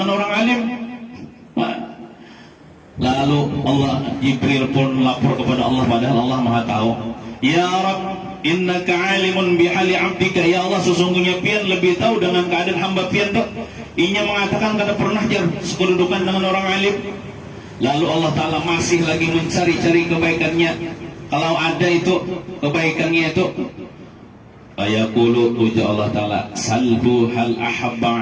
orang alim. Lalu Jibril pun lapor kepada Allah, padahal Allah Maha tahu. Ya Rabb, innaka alimun bihali abdika. Ya Allah, sesungguhnya pian lebih tahu dengan keadaan hamba pian tuh. Inya mengatakan kada pernah jar sekedudukan dengan orang alim. Lalu Allah Ta'ala masih lagi mencari-cari kebaikannya. Kalau ada itu kebaikannya itu, ayaqulu, uja Allah Ta'ala, salhu hal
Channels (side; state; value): both; identical; correlation 1.00